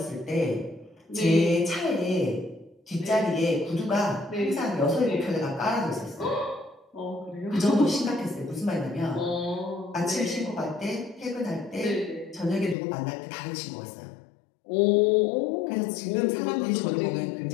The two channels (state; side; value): drops out; right; at 12.8 s